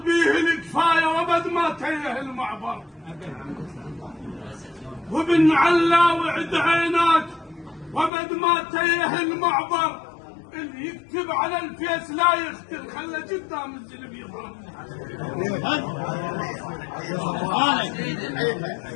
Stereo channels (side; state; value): right; drops out; at 8.1 s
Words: الكفايه وبد ما تيه المعبر. وابن علاوي عد عيناك وبد ما تيه المعبر، اللي يكتب على الفيس لا يختل، خلى قدام الزلم يظهر.